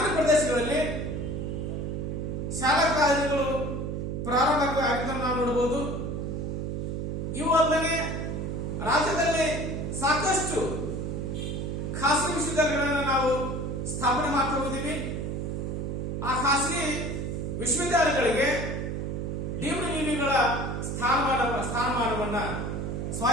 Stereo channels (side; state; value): right; noise; hum, 3 dB below the sound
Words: ಪ್ರದೇಶಗಳಲ್ಲಿ ಶಾಲಾ ಕಾಲೇಜುಗಳು ಪ್ರಾರಂಭ ಆಗಿದ್ದನ್ನು ನಾವು ನೋಡಬಹುದು. ಇವು ಅಲ್ಲದೆ ರಾಜ್ಯದಲ್ಲಿ ಸಾಕಷ್ಟು ಖಾಸಗಿ ವಿಶ್ವವಿದ್ಯಾಲಯಗಳನ್ನು ನಾವು ಸ್ಥಾಪನೆ ಮಾಡ್ತಾ ಹೋಗಿದ್ದೀವಿ. ಆ ಖಾಸಗಿ ವಿಶ್ವವಿದ್ಯಾಲಯಗಳಿಗೆ ಡೀಮ್ಡ್ ಯುನಿಗಳ ಸ್ಥಾನಮಾನವನ್ನ